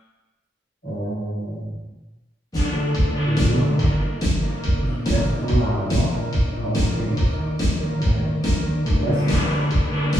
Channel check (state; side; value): normal; both; correlation 0.83